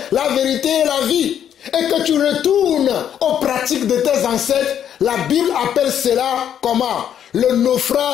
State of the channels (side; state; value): right; quieter; 9.5 dB